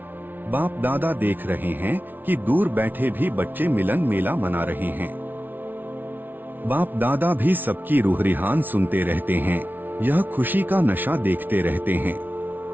बाप दादा देख रहे हैं कि दूर बैठे भी बच्चे मिलन मेला मना रहे हैं। बाप दादा भी सबकी रूह रिहान सुनते रहते हैं, यह खुशी का नशा देखते रहते हैं।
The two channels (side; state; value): left; late; 0.089 ms